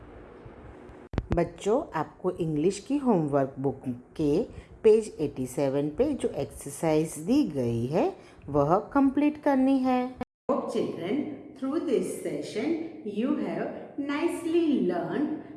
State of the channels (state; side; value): identical; both; correlation 1.00